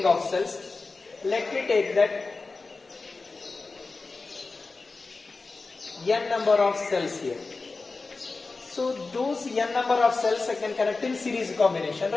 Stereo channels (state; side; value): quieter; right; 3.9 dB